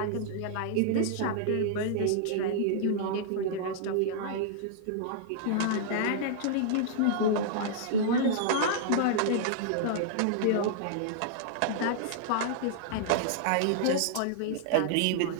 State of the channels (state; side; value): different; both; correlation -0.01